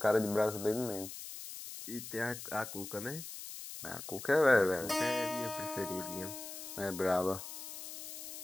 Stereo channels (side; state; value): left; noise; hiss, 10 dB below the sound